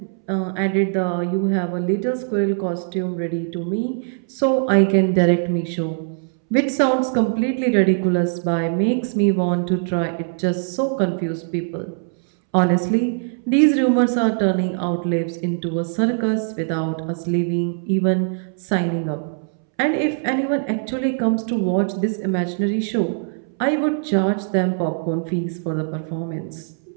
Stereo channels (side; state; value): left; silent; 65 dB below the other